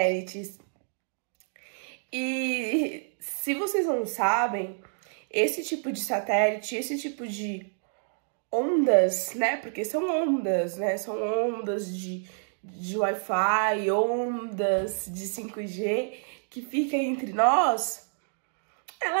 E se vocês não sabem, esse tipo de satélite, esse tipo de ondas, né? Porque são ondas, né? São ondas de Wi-Fi, ondas de 5G que fica entre nós.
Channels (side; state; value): left; silent; digital silence